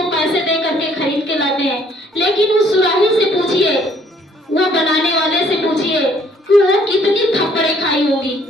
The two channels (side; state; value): both; normal; correlation 0.62